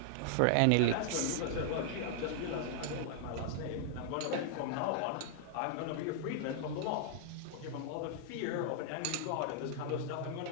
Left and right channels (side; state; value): both; different; correlation -0.01